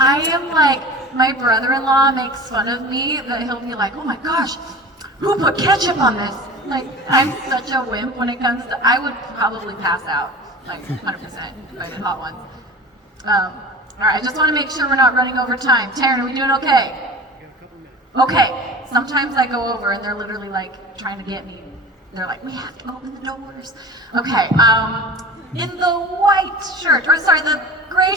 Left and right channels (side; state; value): both; normal; correlation 0.36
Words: am like, my brother-in-law makes fun of me that he'll be like, oh my gosh, who put ketchup on this? Like, I'm such a wimp when it comes to, I would probably pass out, like 100% if I did Hot Ones. All right, I just want to make sure we're not running over time. Taryn, are we doing okay? Okay, sometimes I go over and they're literally like trying to get me. They're like, we have to open the doors. Okay, in the white shirt, or sorry, the gray